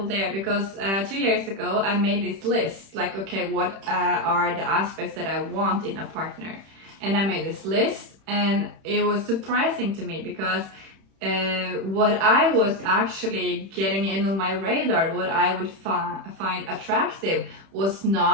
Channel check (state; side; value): late; left; 31 ms